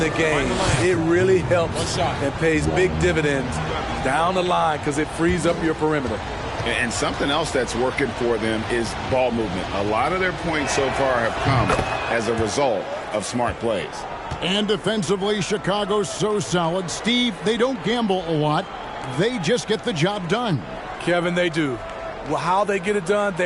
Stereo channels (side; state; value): both; identical; correlation 1.00